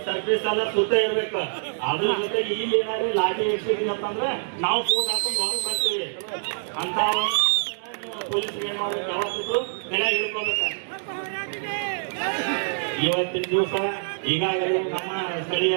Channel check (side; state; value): left; silent; digital silence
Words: ಸರ್ವಿಸ್ ಎಲ್ಲ ಸುತ್ತ ಇರ್ಬೇಕು. ಅದ್ರ ಜೊತೆಗೆ ಇಲ್ಲಿ ಏನಾದ್ರು ಲಾಟಿ ಇಡ್ಸಿದೀನಿ ಅಂತಂದ್ರೆ ನಾವು ಫೋನ್ ಹಾಕೊಂಡು ಹೊರಗೆ ಬರ್ತೀವಿ ಅಂತ ಪೊಲೀಸರು ಏನ್ ಮಾಡ್ಬೇಕು, ಯಾವತ್ತಿದ್ರು ಬೆಲೆ ಹಿಡ್ಕೋಬೇಕ. ಇವತ್ತಿನ ದಿವಸ ಈಗಾಗಲೇ ನಮ್ಮ ಸ್ಥಳೀಯ